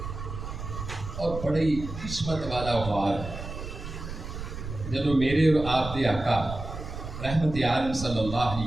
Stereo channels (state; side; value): noise; right; rumble, 8 dB below the sound